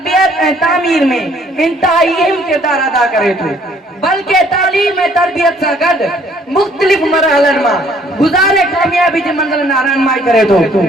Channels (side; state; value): both; normal; correlation 0.61